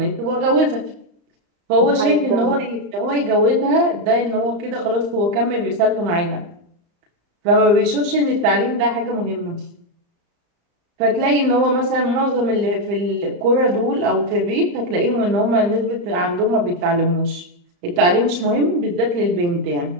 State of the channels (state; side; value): late; left; 35 ms